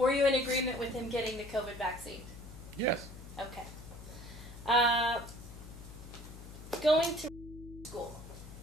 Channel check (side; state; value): left; noise; hum, 14 dB below the sound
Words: you in agreement with him getting the COVID vaccine? yes, Okay. Going to school